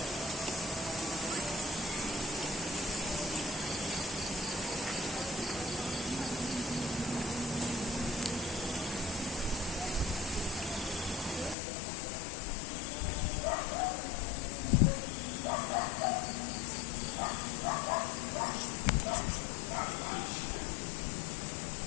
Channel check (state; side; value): drops out; right; at 11.6 s